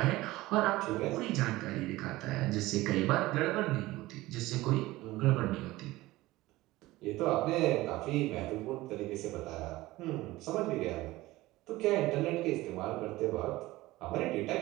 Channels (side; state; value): left; quieter; 18.5 dB